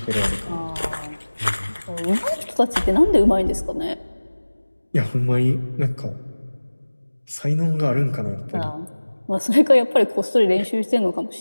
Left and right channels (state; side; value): inverted; both; correlation -1.00